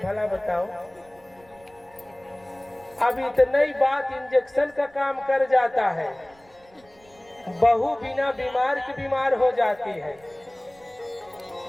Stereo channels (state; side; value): noise; right; rumble, 29 dB below the sound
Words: भला बताओ। अब इतना ही बात इंजेक्शन का काम कर जाता है। बहू बिना बीमार के बीमार हो जाती है।